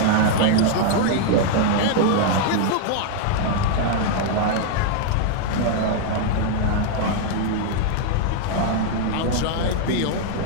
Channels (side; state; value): both; different; correlation 0.00